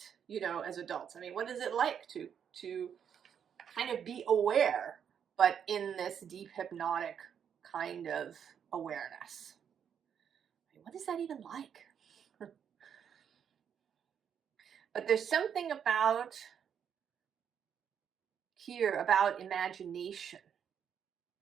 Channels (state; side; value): quieter; left; 8.0 dB